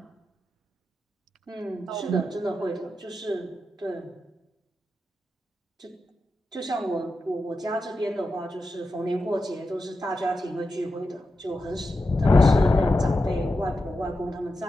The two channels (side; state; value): both; normal; correlation 0.89